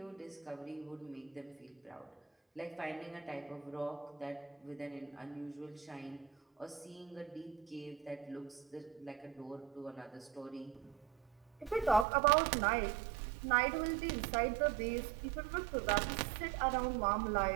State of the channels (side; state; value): left; drops out; at 12.1 s